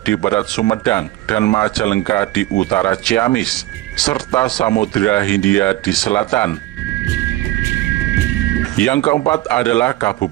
di barat Sumedang dan Majalengka di utara Ciamis, serta Samudra Hindia di selatan. Yang keempat adalah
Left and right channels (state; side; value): quieter; left; 16.7 dB